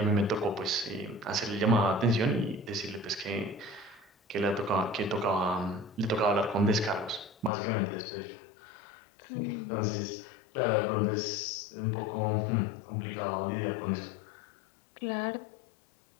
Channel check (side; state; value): right; drops out; at 7.5 s